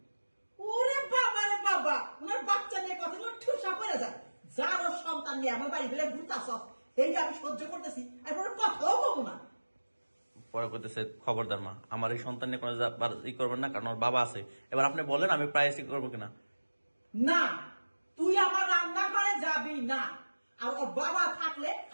ওরে বাবা রে বাবা, ওনার বাচ্চা নিয়ে কথা বলে ঠুসা পড়ে যায়। জারদ সন্তান নিয়ে আমার বাড়ি বেড়ে ঘুরতাছ, এইটা আমি সহ্য করতেছি, আর কোনো কথাও বলবো না। পরে করতেছে খবরদার মা, আমার এই সন্তান নিয়ে কোনো ই করবেন না, কারণ ওর বাবা আছে। এবার আপনি বলেন আমি প্রাইস করবো কিনা। না, তুই আমার রান্নাঘরে যাবি না, আর ওর বাবা থাকলে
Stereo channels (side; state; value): both; inverted; correlation -1.00